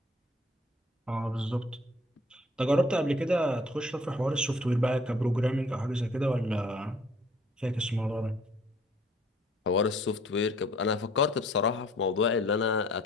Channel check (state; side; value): normal; both; correlation 0.56